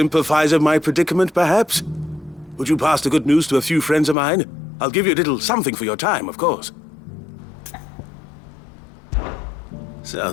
with my predicament, perhaps? Would you pass the good news to a few friends of mine? I'll give you a little something for your time, of course.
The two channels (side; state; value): right; drops out; at 4.2 s